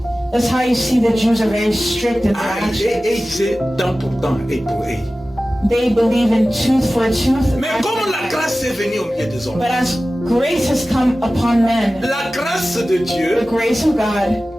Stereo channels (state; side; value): normal; both; correlation 0.96